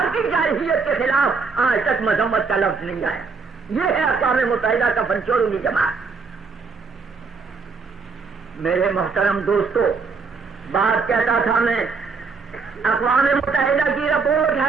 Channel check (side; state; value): left; quieter; 4.7 dB